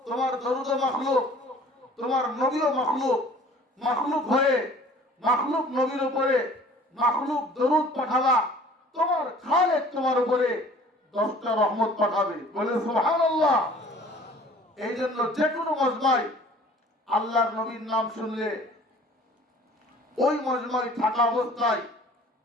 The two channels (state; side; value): normal; both; correlation 0.50